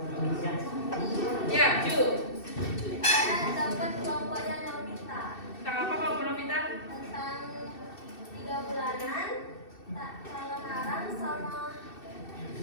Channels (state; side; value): late; right; 2.6 ms